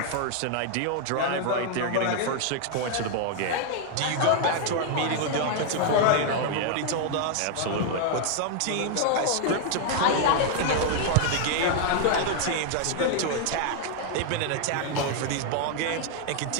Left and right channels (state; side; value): different; both; correlation 0.00